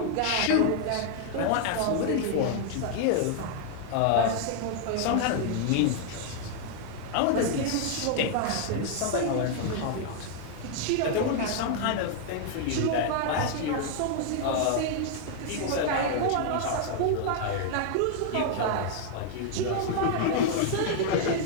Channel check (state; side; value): different; both; correlation 0.00